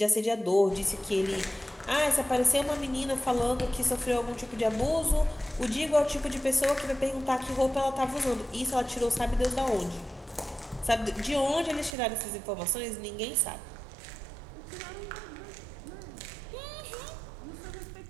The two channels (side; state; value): left; drops out; at 12.0 s